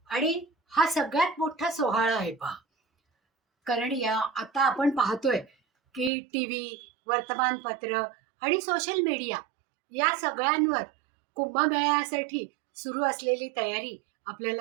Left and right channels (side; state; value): left; drops out; at 6.1 s